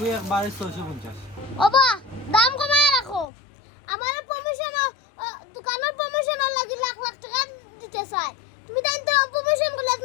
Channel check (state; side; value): drops out; right; at 3.2 s